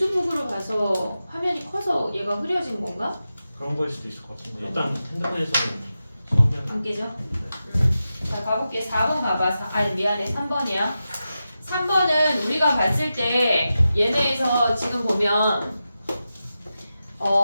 봐서 화면이 커서 얘가 흐려진 건가? 그런 거일 수도 있을 것 같은데 일단 핸드폰에서는 선명. 안 깨져? 자 가볼게. 4번 가봐. 아니 미안해. 3번이야. 3번은 우리가 봤을 때 얘네에서 지금 보면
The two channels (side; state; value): both; inverted; correlation -0.91